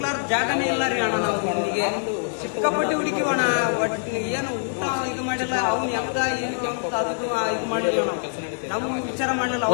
ಜಾಗನೇ ಇಲ್ಲ ರೀ ಅಣ್ಣ. ನಾವು ಹುಡುಗಿಗೆ ಸಿಕ್ಕಾಪಟ್ಟೆ ಹುಡುಕಿವಣ. ಒಟ್ಟು ಏನು ಊಟ ಇದು ಮಾಡಿಲ್ಲ. ಅವ್ನು ಹೆಂಗ ಏನು ಅಂತ ಅದಕ್ಕೂ ಇದು ಮಾಡಿಲ್ಲ. ನಾವು ವಿಚಾರ ಮಾಡಿಲ್ಲ.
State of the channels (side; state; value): right; silent; 57 dB below the other